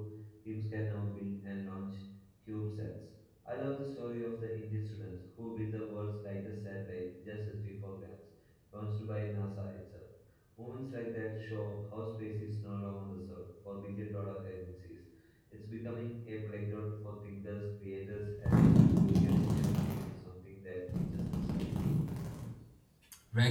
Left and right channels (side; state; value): both; identical; correlation 1.00